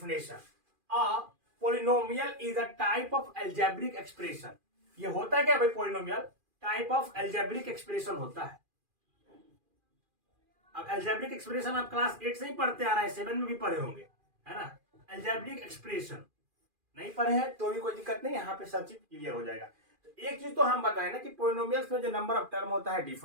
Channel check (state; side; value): late; left; 2.4 ms